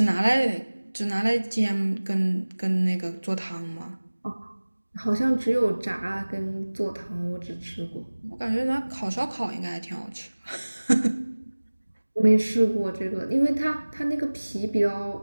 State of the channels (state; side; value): inverted; both; correlation -1.00